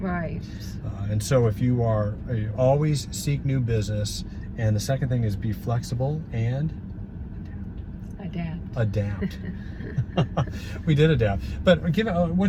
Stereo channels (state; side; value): identical; both; correlation 1.00